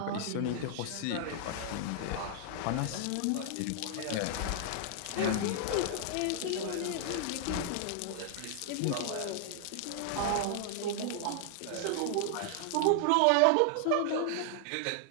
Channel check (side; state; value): both; different; correlation -0.01